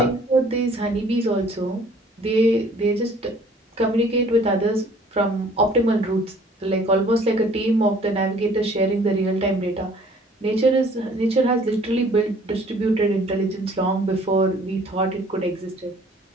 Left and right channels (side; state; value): both; normal; correlation 0.55